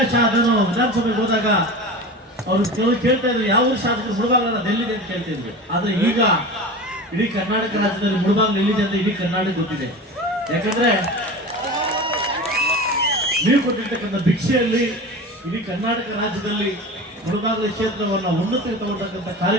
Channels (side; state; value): both; normal; correlation 0.31